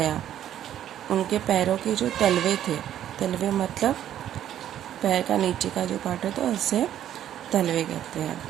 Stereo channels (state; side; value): quieter; left; 11.1 dB